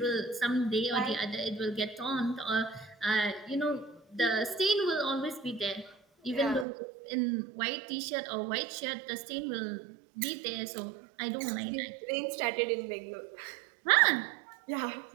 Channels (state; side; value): drops out; left; at 6.7 s